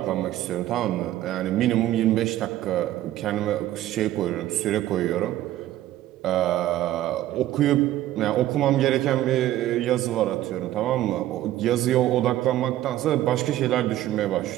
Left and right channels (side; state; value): left; quieter; 13.9 dB